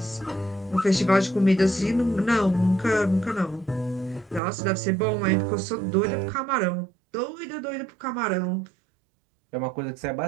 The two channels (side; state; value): left; drops out; at 4.4 s